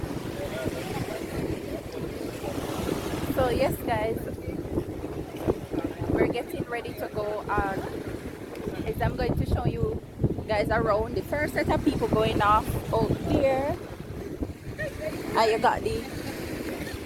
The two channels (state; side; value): identical; both; correlation 1.00